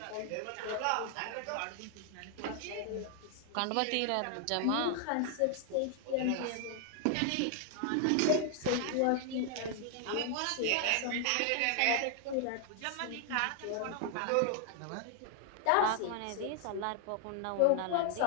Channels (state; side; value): different; both; correlation 0.00